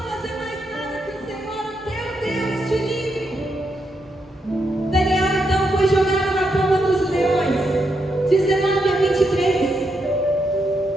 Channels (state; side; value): normal; both; correlation 0.81